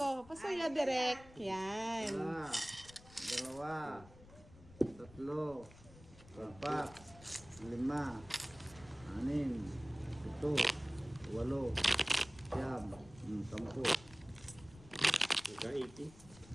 Pasuya direct. Yan. Isa, dalawa, tatlo, apat, lima, anim, pito, walo, siyam, 10. Nagka-80.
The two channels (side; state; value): left; noise; rumble, 21 dB below the sound